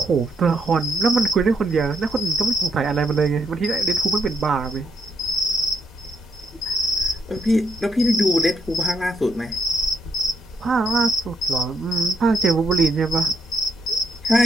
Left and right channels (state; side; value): normal; both; correlation 0.76